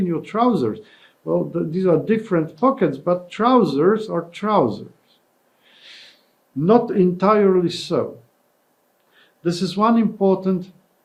your trousers. Well, these are different pockets, but trousers are trousers. Not entirely so. This is one important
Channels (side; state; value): both; identical; correlation 1.00